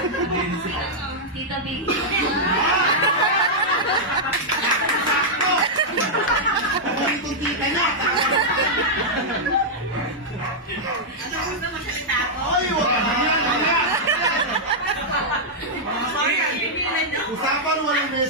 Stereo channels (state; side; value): normal; both; correlation -0.06